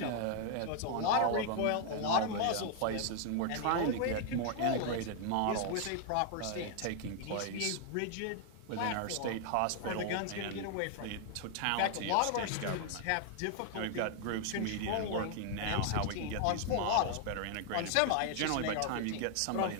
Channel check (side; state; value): both; different; correlation 0.00